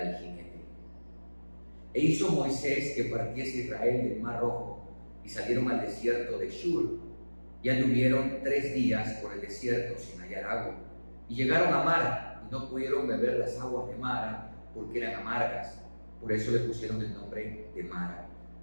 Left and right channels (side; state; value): both; inverted; correlation -1.00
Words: jinete. E hizo Moisés que partiese Israel del mar Rojo, y salieron al desierto de Shur, y anduvieron 3 días por el desierto sin hallar agua, y llegaron a Mara, y no pudieron beber las aguas de Mara, porque eran amargas. Por eso le pusieron el nombre de Mara.